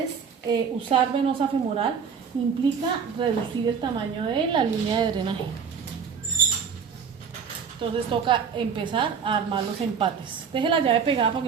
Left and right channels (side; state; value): left; quieter; 6.6 dB